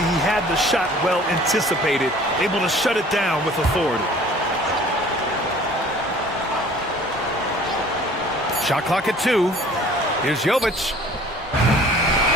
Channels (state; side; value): normal; both; correlation 0.50